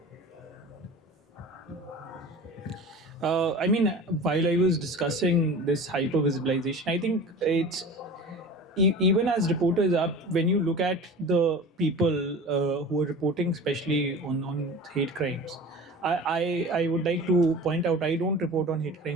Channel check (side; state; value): both; normal; correlation 0.37